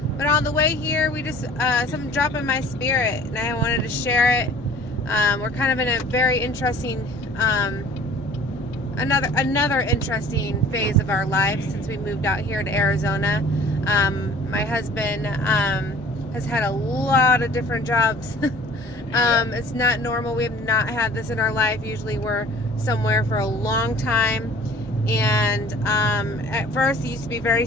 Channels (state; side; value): normal; both; correlation 0.49